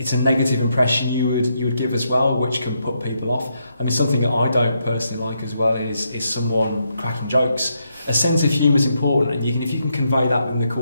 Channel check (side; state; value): both; inverted; correlation -0.80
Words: it's a negative impression you would give as well, which can put people off. I mean, something that I don't personally like as well is someone cracking jokes. A sense of humour is important, and if you can convey that in the